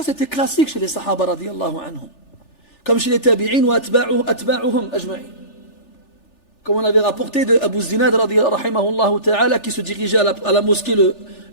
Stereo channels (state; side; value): late; right; 3.4 ms